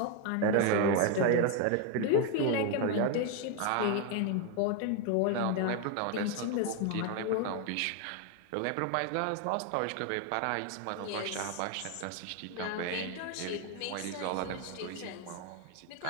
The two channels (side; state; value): both; different; correlation 0.01